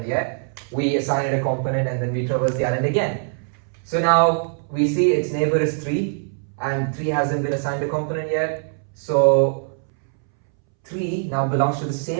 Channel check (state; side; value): silent; left; 64 dB below the other